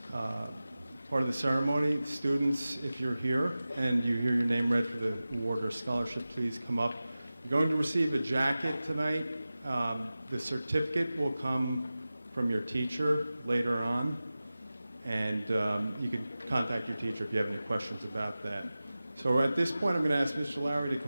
Part of the ceremony, students, if you're here and you hear your name read for the award or scholarship, please come up. You're going to receive a jacket tonight. The certificate will come from your teacher later on, and you can contact your teacher if you have any questions about that. So at this point, I'm going to ask Mr. Lowry to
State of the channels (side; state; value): both; inverted; correlation -0.96